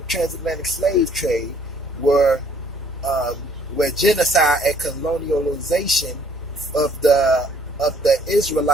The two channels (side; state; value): both; normal; correlation 0.62